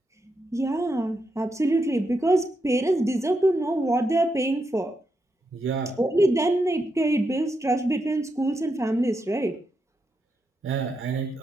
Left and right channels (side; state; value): both; normal; correlation 0.84